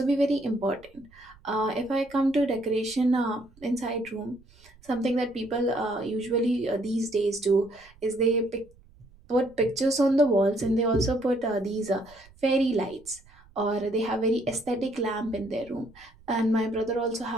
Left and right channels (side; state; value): right; noise; rumble, 27 dB below the sound